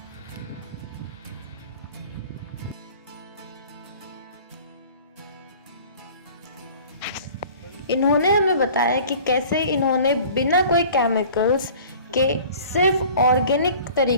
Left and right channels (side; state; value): both; inverted; correlation -0.46